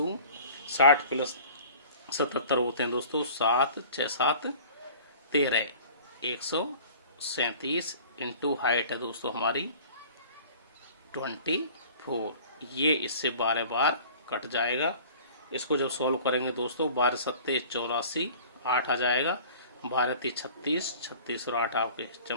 60 प्लस 77 होते हैं दोस्तों 7 6 7 13, 137 इंटू हाइट है दोस्तों हमारी 24। ये इससे 12 बार कट जाएगा। इसको जब सॉल्व करेंगे दोस्तों 12 सत्ते 84, 8 आ जाएगा, 12 ती 36, 36 और 8 आपके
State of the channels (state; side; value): inverted; both; correlation -0.45